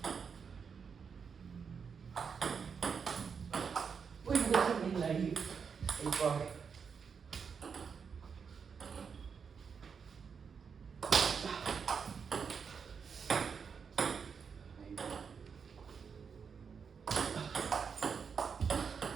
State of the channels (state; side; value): quieter; left; 6.2 dB